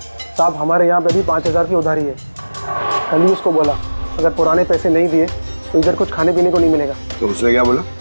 साहब। हमारे यहाँ पे भी 5,000 की उधारी है। कल ही उसको बोला अगर पुराने पैसे नहीं दिए तो इधर कुछ खाने पीने को नहीं मिलेगा। तो उसने क्या बोला?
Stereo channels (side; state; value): both; inverted; correlation -1.00